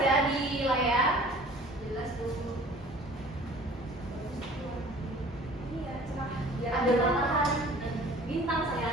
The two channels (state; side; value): normal; both; correlation 0.48